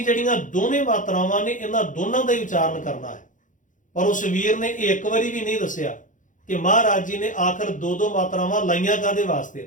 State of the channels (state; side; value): late; right; 0.37 ms